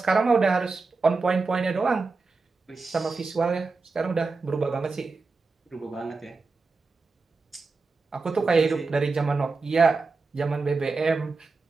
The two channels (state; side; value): quieter; left; 4.1 dB